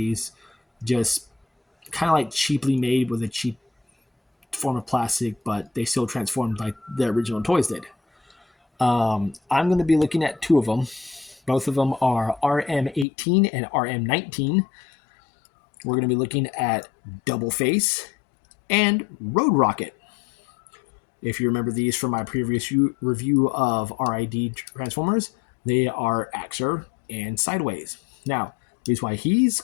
just kind of like cheaply made with a cheap form of plastic, but they still transformed like the original toys did. I'm going to be looking at two of them. Both of them are RM18 and RM19. We're going to be looking at Doubleface and Roadrocket. If you remember these from my previous review of RID Transformers, they are Axer and Sideways. Now, the reason why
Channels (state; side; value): drops out; right; at 13.1 s